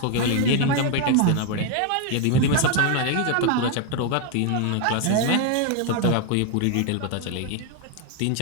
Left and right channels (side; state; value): both; different; correlation 0.01